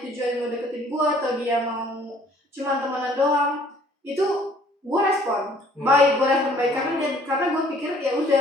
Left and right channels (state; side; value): normal; both; correlation 0.57